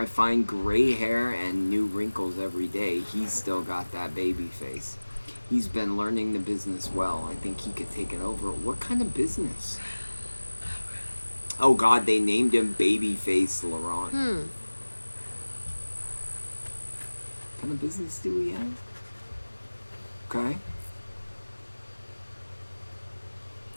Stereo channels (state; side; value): inverted; both; correlation -1.00